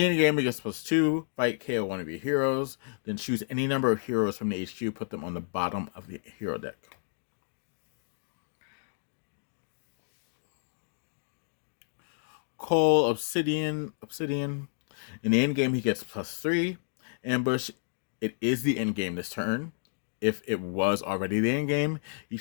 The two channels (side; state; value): right; silent; digital silence